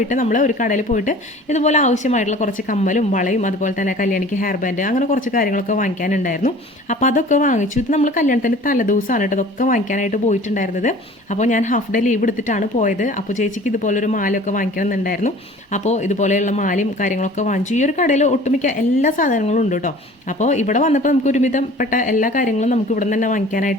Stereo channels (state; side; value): normal; both; correlation 0.46